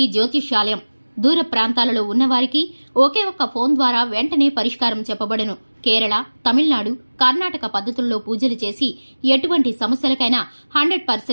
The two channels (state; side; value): inverted; both; correlation -1.00